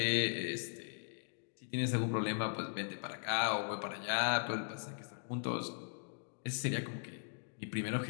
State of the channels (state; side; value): silent; right; digital silence